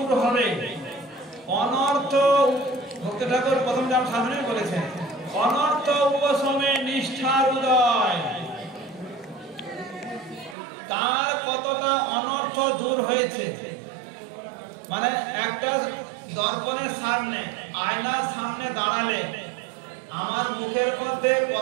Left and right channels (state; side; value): drops out; left; at 10.6 s